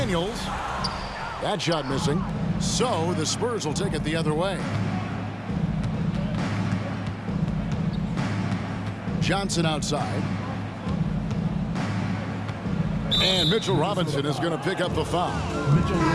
That shot missing. So the Spurs will take it the other way. Johnson outside. And Mitchell Robinson is going to pick up the foul.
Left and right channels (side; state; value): both; identical; correlation 1.00